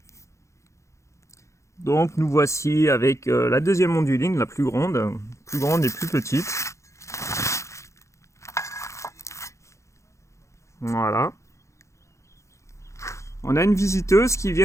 Donc nous voici avec la deuxième onduline, la plus grande et plus petite. Voilà. On a une visiteuse qui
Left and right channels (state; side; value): late; right; 0.14 ms